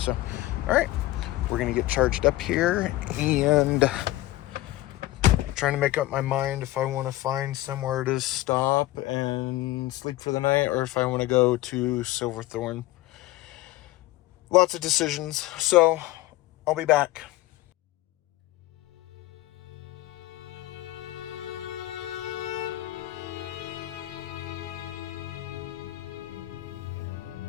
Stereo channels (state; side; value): quieter; right; 16.7 dB